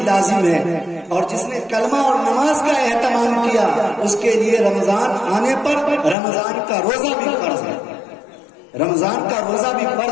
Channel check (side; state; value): right; drops out; at 6.2 s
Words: لازم ہے، اور جس نے کلمہ اور نماز کا اہتمام کیا اس کے لیے رمضان آنے پر رمضان کا روزہ بھی فرض ہے. رمضان کا روزہ بھی